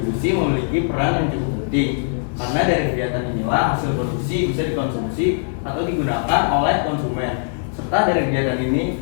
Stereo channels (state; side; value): silent; right; 63 dB below the other